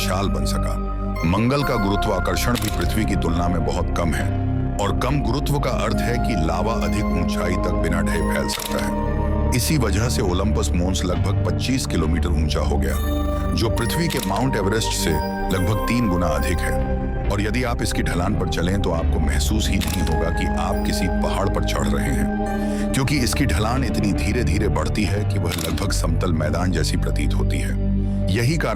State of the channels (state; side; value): identical; both; correlation 1.00